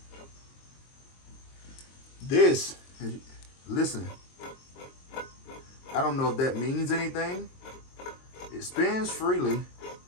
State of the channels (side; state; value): right; late; 22 ms